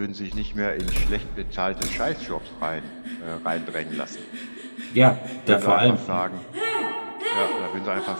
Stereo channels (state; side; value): inverted; both; correlation -1.00